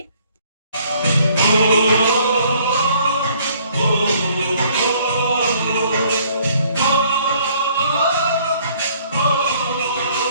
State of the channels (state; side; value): inverted; both; correlation -0.61